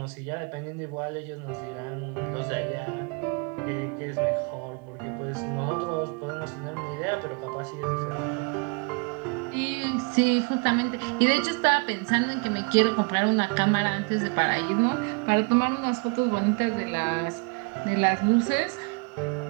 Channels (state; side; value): quieter; left; 33.0 dB